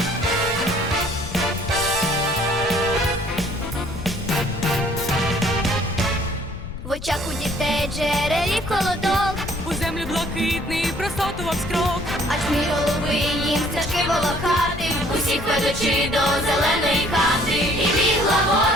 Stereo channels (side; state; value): left; noise; rumble, 10 dB below the sound